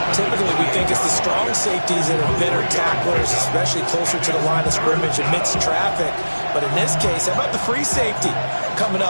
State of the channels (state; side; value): inverted; both; correlation -1.00